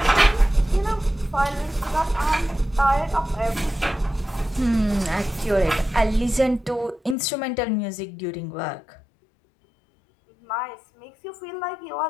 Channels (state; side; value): drops out; right; at 7.2 s